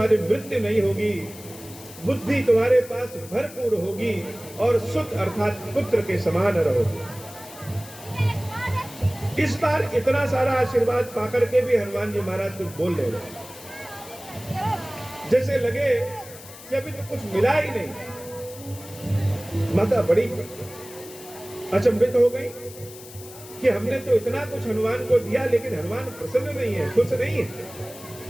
मृत्यु नहीं होगी, बुद्धि तुम्हारे पास भरपूर होगी और सुख अर्थात पुत्र के समान रहोगे। इस बार इतना सारा आशीर्वाद पाकर के भी हनुमान जी महाराज कुछ बोल रहे हैं, जैसे लगे कि अभी तो कुछ मिला ही नहीं। माता बड़ी अचंभित हो गई कि हमने तो इतना कुछ हनुमान को दिया, लेकिन हनुमान प्रसन्न नहीं है, खुश नहीं है,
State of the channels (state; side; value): noise; left; hiss, 17 dB below the sound